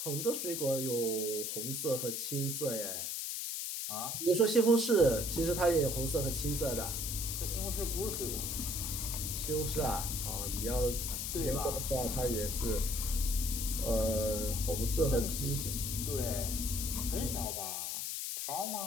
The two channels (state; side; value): noise; left; hiss, 3 dB below the sound